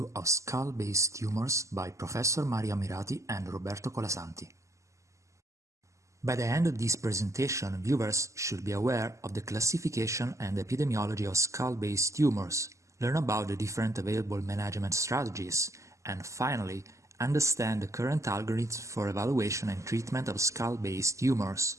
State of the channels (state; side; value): late; left; 0.15 ms